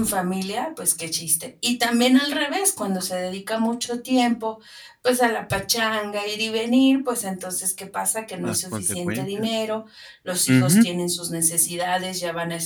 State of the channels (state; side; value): identical; both; correlation 1.00